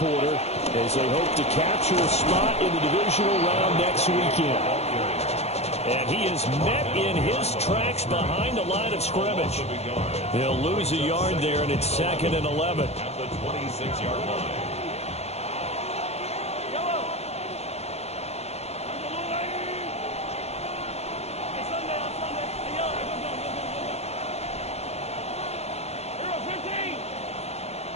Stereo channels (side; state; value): right; late; 0.31 ms